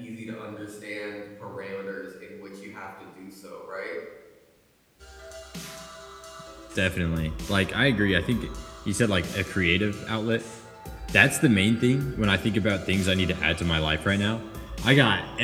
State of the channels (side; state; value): both; identical; correlation 1.00